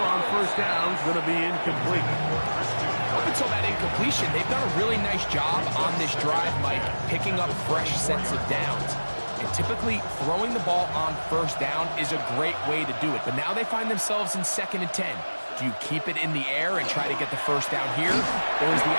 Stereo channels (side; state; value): both; inverted; correlation -1.00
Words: 1st down is going to be incomplete. Up until that incompletion, they've done a really nice job on this drive, Mike, picking up fresh sets of downs. And typically, throwing the ball on 1st down is a great way to do it. But now they find themselves in 2nd and 10. Do you keep it in the air and try to get the 1st down here? Or is the